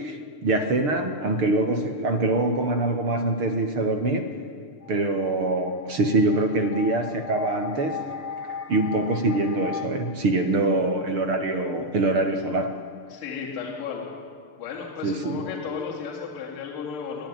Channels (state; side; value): late; left; 6.7 ms